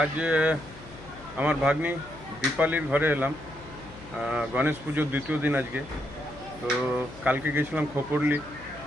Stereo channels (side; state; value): left; noise; hum, 18 dB below the sound